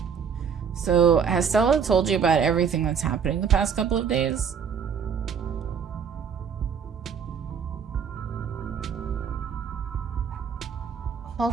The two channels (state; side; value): quieter; left; 6.9 dB